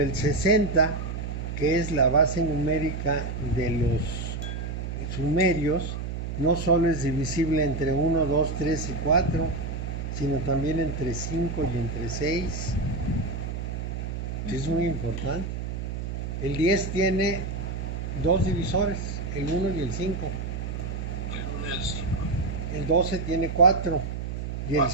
60, que es la base numérica de los sumerios, no solo es divisible entre 1, 2, 3 y 4, sino también entre 5 y entre 6. Es muy importante. El 10 tiene 2 divisores, el 1 y el 5. El 1 y el 5. El 12 tiene 4 y el 4.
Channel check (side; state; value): right; noise; hum, 5 dB below the sound